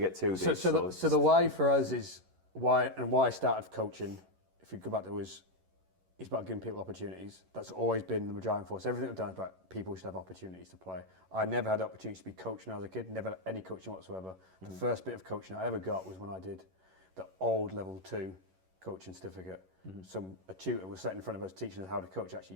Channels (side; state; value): left; late; 11 ms